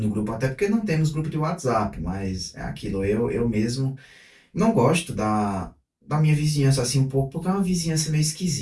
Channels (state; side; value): identical; both; correlation 1.00